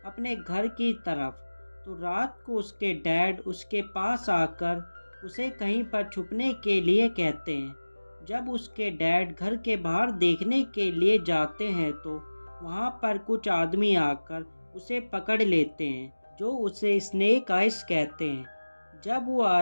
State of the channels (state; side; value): inverted; both; correlation -1.00